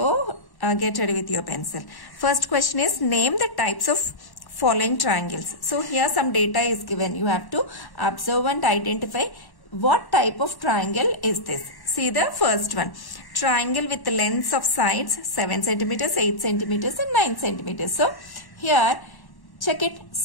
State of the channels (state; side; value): late; right; 1.1 ms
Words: get ready with your pencil. First question is, name the types of following triangles. So here some data is given. You have to observe and identify what type of triangle is this. See the first one. Triangle with the lengths of sides 7 centimeters, 8 centimeters and 9 centimeters. So here check it,